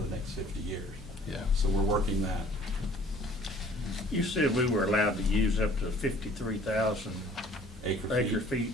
next 50 years. Yeah. So we're working that. You said we were allowed to use up to 53,000 acre feet.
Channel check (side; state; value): both; normal; correlation 0.53